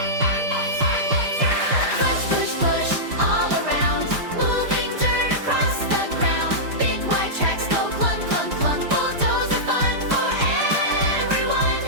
Push, push, push all around, moving dirt across the ground. Big wide tracks go clunk, clunk, clunk. Bulldozer fun for everyone.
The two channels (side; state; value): left; late; 5.0 ms